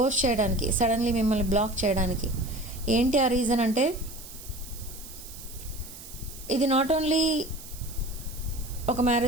చేయడానికి, సడన్లీ మిమ్మల్ని బ్లాక్ చేయడానికి. ఏంటి ఆ రీజన్ అంటే, ఇది నాట్ ఓన్లీ ఒక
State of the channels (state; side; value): noise; right; hiss, 15 dB below the sound